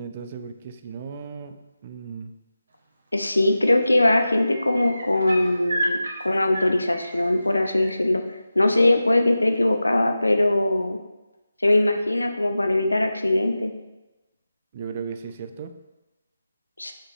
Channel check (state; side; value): inverted; both; correlation -0.94